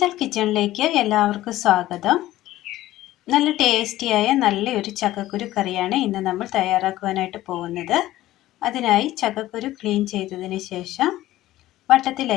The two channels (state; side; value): quieter; right; 15.4 dB